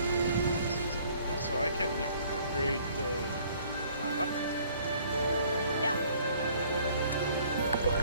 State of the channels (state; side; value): inverted; both; correlation -0.58